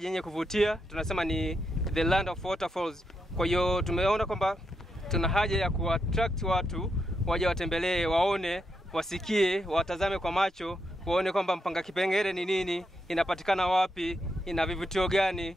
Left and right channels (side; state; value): both; normal; correlation 0.82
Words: yenye kuvutia. Tunasema ni the land of waterfalls. Kwa hiyo tumeona kwamba tuna haja ya kuattract watu waje watembelee, waone, wasikie, watazame kwa macho, waone kwamba Mpanga Kipengere ni nini, inapatikana wapi, ina vivutio gani.